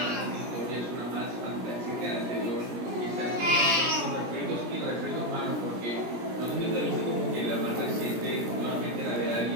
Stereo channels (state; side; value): late; left; 17 ms